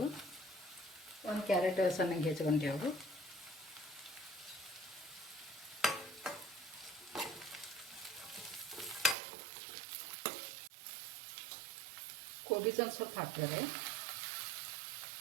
1 ಕ್ಯಾರೆಟ್ ಸಣ್ಣಗೆ ಹೆಚ್ಚಿಕೊಂಡೆವು. ಕೋಬೀಸ್ ಒಂದು ಸ್ವಲ್ಪ ಹಾಕ್ತಾರೆ.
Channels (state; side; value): drops out; left; at 9.2 s